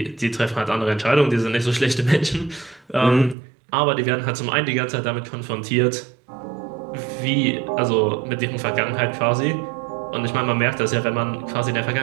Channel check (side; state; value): left; drops out; at 3.4 s